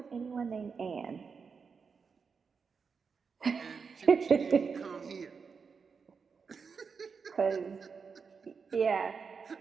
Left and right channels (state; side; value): quieter; left; 5.5 dB